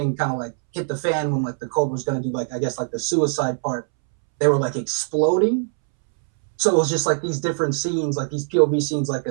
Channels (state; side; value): silent; left; 64 dB below the other